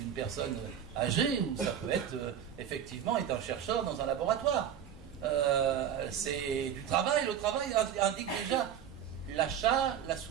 personne âgée, ou ça peut être effectivement être un chercheur dans un laboratoire. C'est du travail. Le travail indique déjà l'achat, la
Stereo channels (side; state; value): left; quieter; 9.1 dB